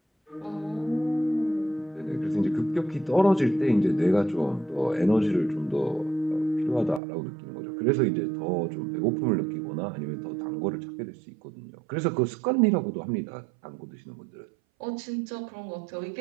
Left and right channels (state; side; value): drops out; left; at 7.0 s